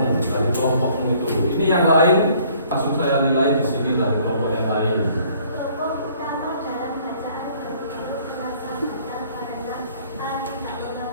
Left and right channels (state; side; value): inverted; both; correlation -0.59